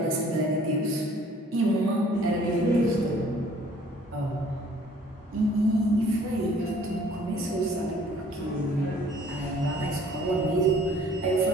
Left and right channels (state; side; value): normal; both; correlation 0.56